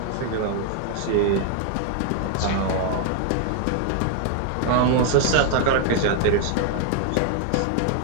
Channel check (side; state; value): both; different; correlation 0.00